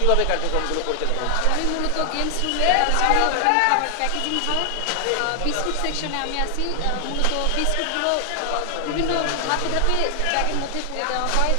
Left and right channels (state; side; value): different; both; correlation 0.00